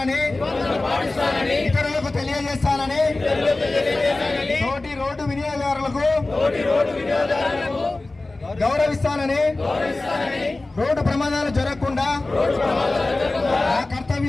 ఇతరులకు తెలియజేస్తానని తోటి రోడ్డు వినియోగదారులకు గౌరవిస్తానని రోడ్డు ప్రమాదాలు జరగకుండా ఆ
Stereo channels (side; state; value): right; quieter; 3.1 dB